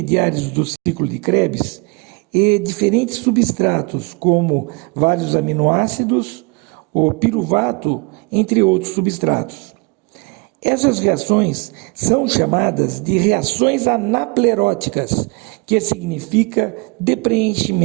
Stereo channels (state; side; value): quieter; left; 28.6 dB